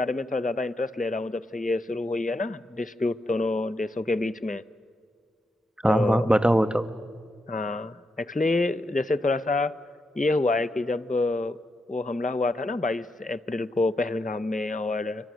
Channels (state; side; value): normal; both; correlation 0.84